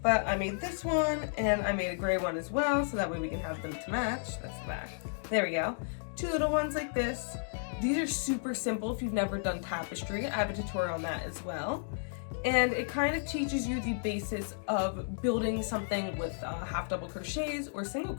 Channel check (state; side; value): silent; right; digital silence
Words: but I made this one, and I made a gray one as well, so that way we can have them to match. That's the back. There we go. Two little ones like this. These are super simple if you've never done tapestry. I have a tutorial on that as well. And it kind of teaches you the basis of building something with half double crochets or single